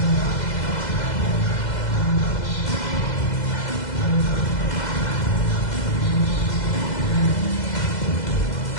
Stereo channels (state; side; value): late; right; 2.0 ms